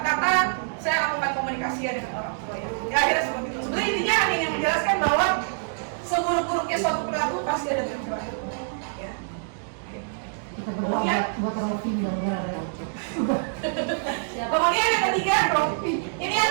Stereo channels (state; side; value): silent; left; digital silence